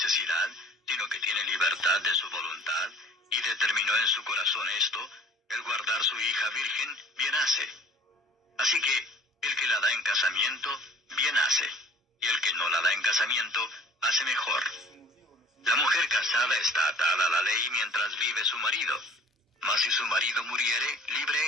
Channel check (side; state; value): both; normal; correlation 0.50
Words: sino que tiene libertad de su voluntad, y determinó en su corazón esto, el guardar su hija virgen, bien hace. Así que, el que la da en casamiento, bien hace, y el que no la da en casamiento, hace mejor. La mujer casada está atada a la ley mientras vive su marido, mas si su marido muriere,